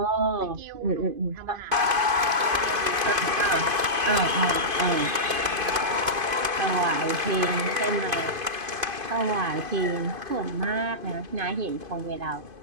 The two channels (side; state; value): left; late; 2.5 ms